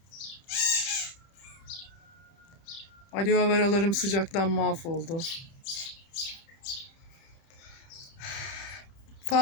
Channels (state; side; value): late; right; 31 ms